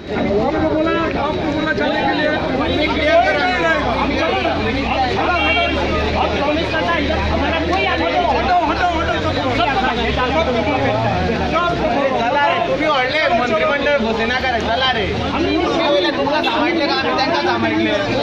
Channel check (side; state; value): both; identical; correlation 1.00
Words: आपको बोला चलने के लिए मंत्रिमंडळ घोषणा करे चला रे तुमका सांगितले का आम्ही त्यांना